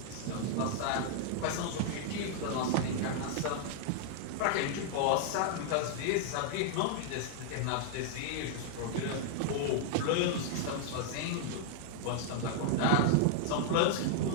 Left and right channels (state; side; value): different; both; correlation -0.01